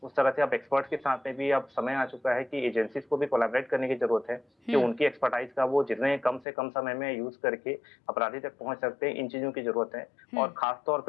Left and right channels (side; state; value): right; drops out; at 6.5 s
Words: उस तरह से अब एक्सपर्ट्स के साथ में भी अब समय आ चुका है कि एजेंसीज को भी कोलैबोरेट करने की जरूरत है कि उनकी एक्सपर्टाइज का वो जितने कम से कम समय में यूज करके अपराधी तक पहुंच सकते हैं, इन चीजों की जरूरत है। और खासतौर